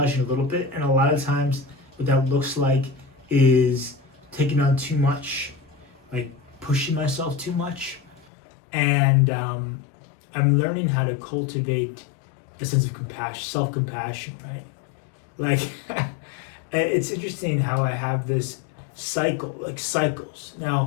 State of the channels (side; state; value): right; drops out; at 8.2 s